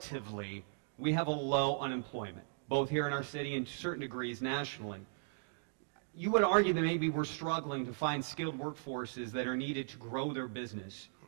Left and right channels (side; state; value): left; silent; digital silence